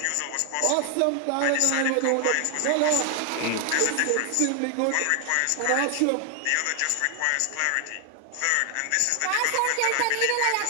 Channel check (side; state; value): both; different; correlation 0.00